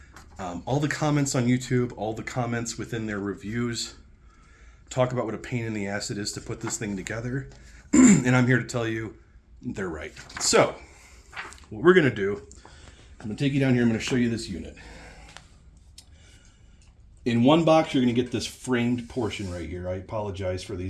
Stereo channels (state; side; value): identical; both; correlation 1.00